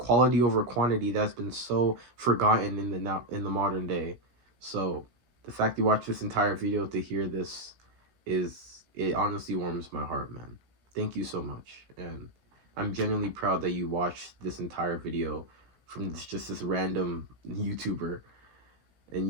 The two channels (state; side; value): late; left; 16 ms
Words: over quantity that's been so forgotten in the modern day. So The fact you watched this entire video to hear this it honestly warms my heart, man. Thank you so much. And I'm genuinely proud that you watched this entire video from this random YouTuber,